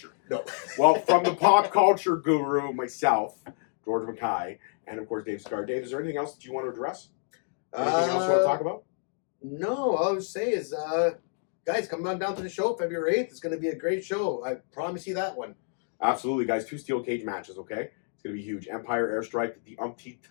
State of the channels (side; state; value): right; silent; digital silence